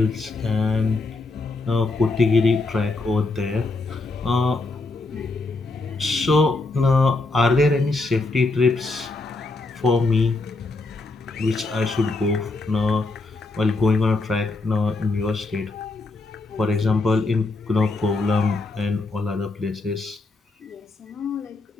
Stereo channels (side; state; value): right; quieter; 3.4 dB